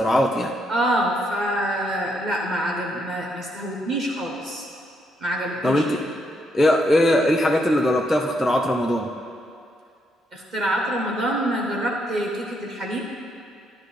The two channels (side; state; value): both; normal; correlation 0.76